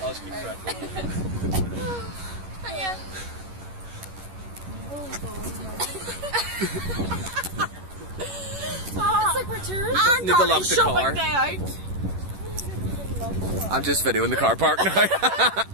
I'll just keep track. Yeah. It's like we're tourists. Need to lock the car. Day out. I'm just videoing the car park now.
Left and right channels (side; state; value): left; late; 11 ms